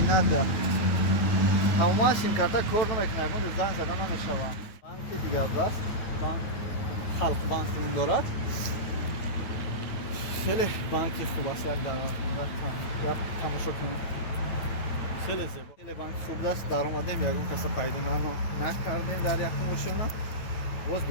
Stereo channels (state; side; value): late; right; 9.2 ms